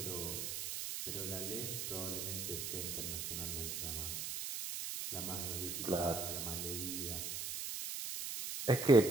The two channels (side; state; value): right; noise; hiss, 4 dB below the sound